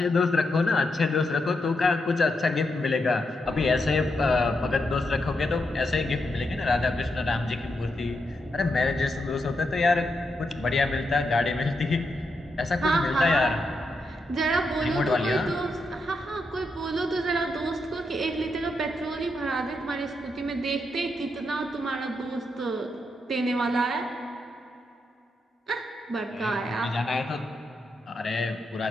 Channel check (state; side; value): normal; both; correlation 0.83